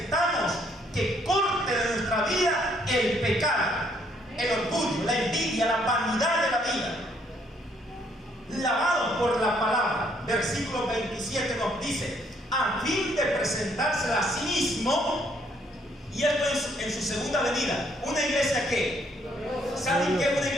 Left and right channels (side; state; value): both; normal; correlation 0.68